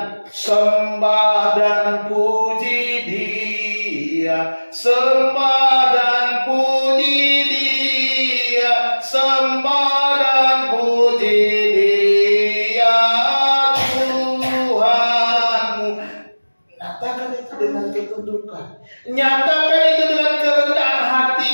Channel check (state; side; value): inverted; both; correlation -1.00